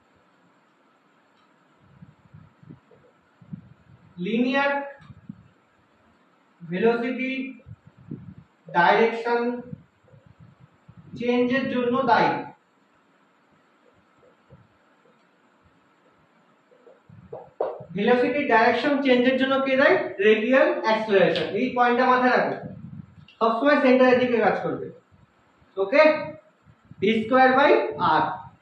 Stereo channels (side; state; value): both; identical; correlation 1.00